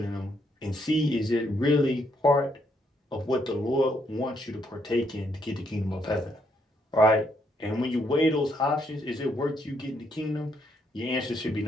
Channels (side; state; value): both; normal; correlation 0.74